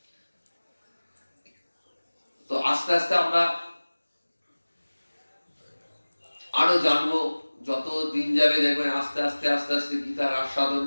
তো আস্তে আস্তে আমরা আরো জানবো। যত দিন যাবে দেখবেন আস্তে আস্তে আস্তে আস্তে গীতার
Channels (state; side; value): inverted; both; correlation -1.00